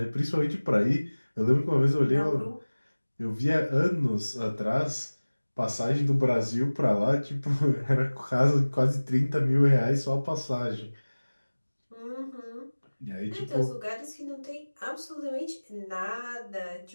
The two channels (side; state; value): both; inverted; correlation -1.00